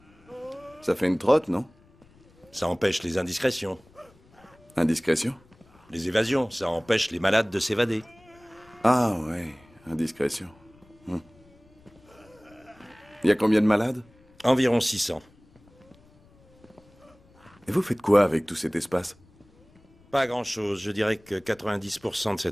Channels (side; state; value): left; noise; rumble, 29 dB below the sound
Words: Ça fait une trotte, non? Ça empêche les indiscrétions. Indiscrétion? Les évasions, ça empêche les malades de s'évader. Ah ouais, indiscrétion. Il y a combien de malades? Environ 600. Et vous faites quoi avec tout cet espace? Pas grand-chose. Je dirais que 90% de